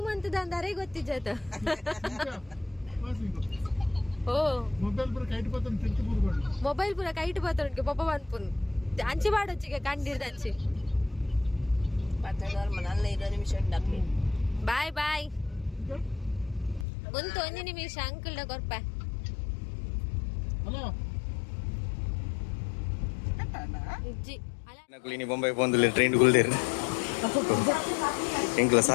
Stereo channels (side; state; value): right; drops out; at 16.9 s